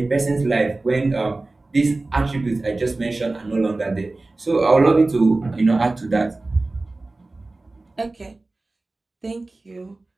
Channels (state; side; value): quieter; left; 3.1 dB